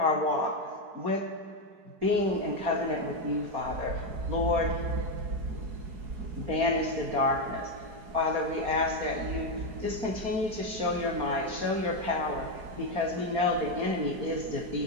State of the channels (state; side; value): late; left; 4.3 ms